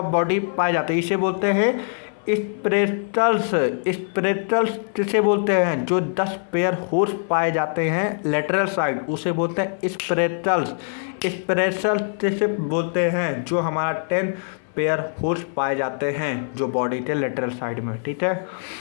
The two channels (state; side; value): silent; right; 57 dB below the other